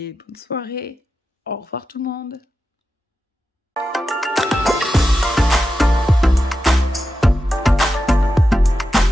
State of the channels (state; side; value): normal; both; correlation 0.90